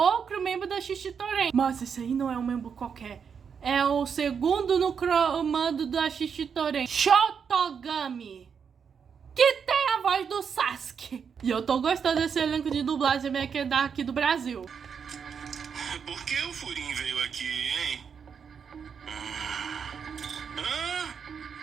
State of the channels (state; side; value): quieter; left; 6.7 dB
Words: membro da Shishitoren. Mas esse aí não é um membro qualquer. É o segundo no comando da Shishitoren, Shotogami, que tem a voz do Sasuke. E eu tô gostando desse elenco de dublagem meio que daqui do Brasil. Por que o Furin veio aqui, hein?